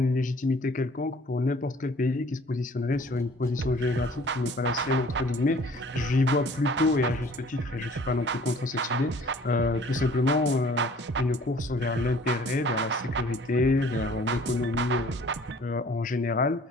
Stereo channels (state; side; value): normal; both; correlation 0.53